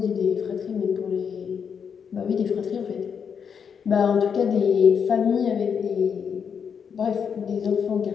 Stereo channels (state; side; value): quieter; right; 6.9 dB